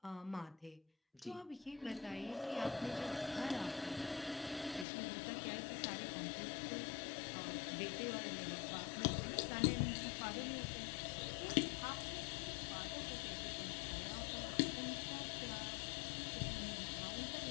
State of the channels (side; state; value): right; drops out; at 4.9 s